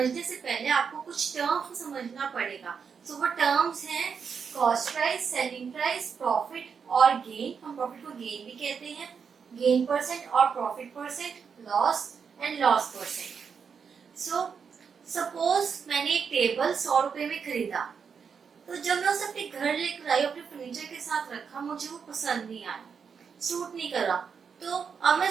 से पहले आपको कुछ टर्म्स को समझना पड़ेगा। वो टर्म्स हैं cost price, selling price, profit और गेन। हम प्रॉफिट को गेन भी कहते हैं, गेन परसेंट और profit percent, loss and loss percent. Suppose मैंने एक टेबल 100 रुपए में खरीदा, तो जब मैं उसे अपने घर लेकर आई, अपने फर्नीचर के साथ रखा, मुझे वो पसंद नहीं आया, सूट नहीं करा, तो अब मैं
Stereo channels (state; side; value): quieter; left; 6.3 dB